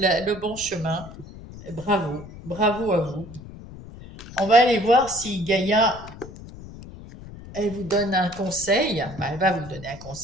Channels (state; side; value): noise; left; rumble, 15 dB below the sound